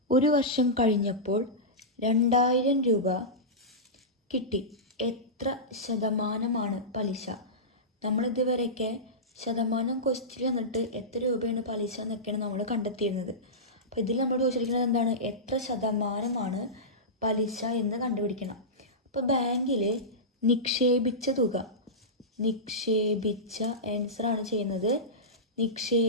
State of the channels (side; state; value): both; normal; correlation -0.15